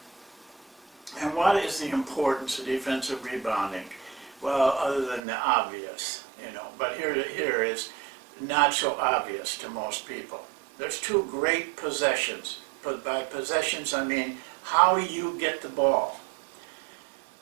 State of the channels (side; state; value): left; drops out; at 5.2 s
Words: And what is the importance of defensive rebounding? Well, other than the obvious, but here is not so obvious to most people. There's two great possessions. But by possessions, I mean how you get the ball.